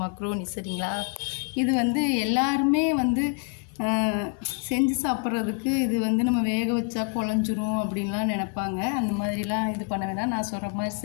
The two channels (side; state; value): right; quieter; 34.9 dB